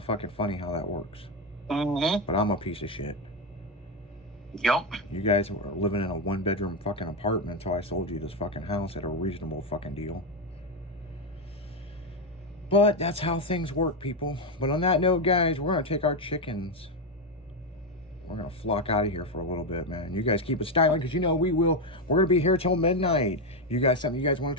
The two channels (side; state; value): both; normal; correlation 0.08